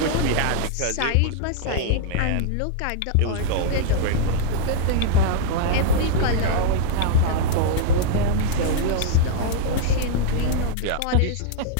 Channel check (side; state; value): both; different; correlation -0.01